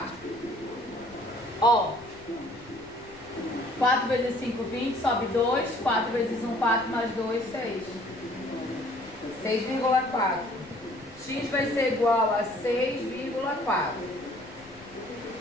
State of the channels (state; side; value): noise; left; rumble, 23 dB below the sound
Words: Ó. 4 vezes 5, 20. Sobe 2. 4 vezes 1, 4. Mais 2, 6. 6,4. X vai ser igual a 6,4.